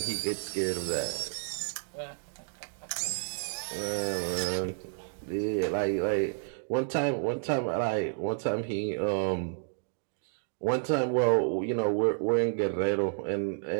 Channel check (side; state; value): left; silent; digital silence